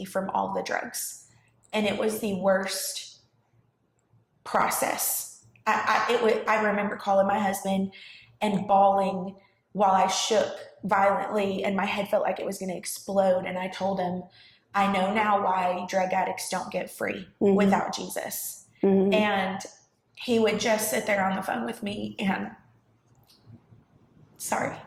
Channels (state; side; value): identical; both; correlation 1.00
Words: from all the drugs. And it was the worst process. I remember calling my husband and bawling while I shook violently and my head felt like it was going to explode. And I told him, I know now why drug addicts don't get free without Jesus. And he would just sit there on the phone with me and,